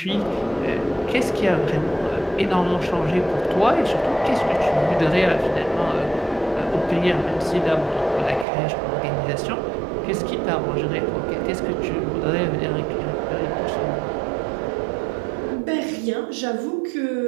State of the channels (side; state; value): left; drops out; at 8.5 s